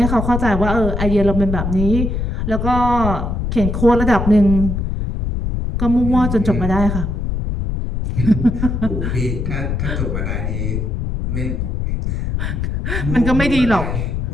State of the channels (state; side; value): noise; left; rumble, 2 dB below the sound